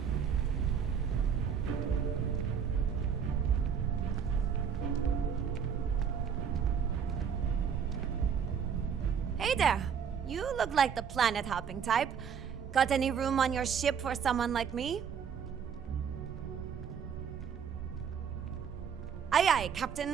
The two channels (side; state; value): left; quieter; 7.3 dB